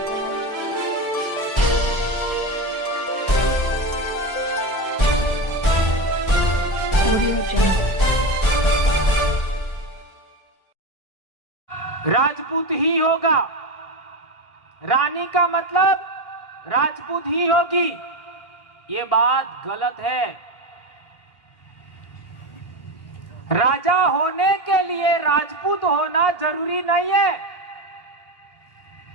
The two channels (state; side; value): late; right; 1.6 ms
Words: Audio Jungle. Rajput ही होगा। रानी का मतलब राजपूत ही होगी, ये बात गलत है। राजा होने के लिए राजपूत होना जरूरी नहीं है।